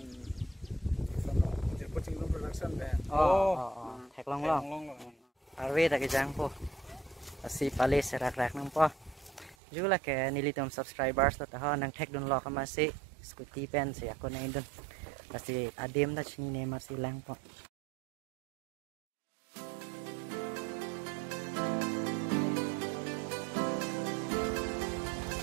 coaching production be thek long arve ta ke jang po asi pale se rak rak nang po jula ke nilitom subscribers ta ha nang thek don lo ka ma se scooty pen se ako na indon kasi adem na chini ne ma silang po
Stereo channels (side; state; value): left; drops out; at 9.6 s